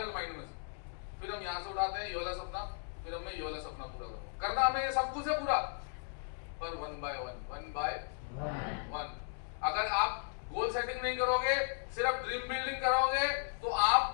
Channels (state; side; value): silent; right; 54 dB below the other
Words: माइंड में से। फिर हम यहाँ से उठाते हैं ये वाला सपना, फिर मैं ये वाला सपना पूरा करूंगा। करना हमें ये सब कुछ है पूरा, पर 1 by 1 अगर आप गोल सेटिंग नहीं करोगे, सिर्फ ड्रीम बिल्डिंग करोगे, तो